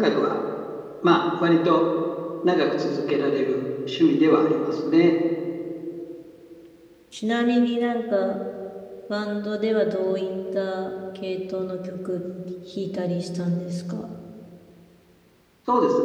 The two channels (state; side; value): identical; both; correlation 1.00